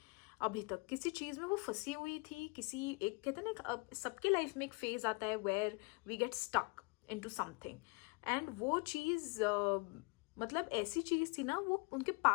अभी तक किसी चीज में वो फंसी हुई थी, किसी एक कहते हैं ना सबके लाइफ में एक फेज आता है where we get stuck into something, and वो चीज मतलब ऐसी चीज थी ना, वो उनके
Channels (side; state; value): right; quieter; 30.5 dB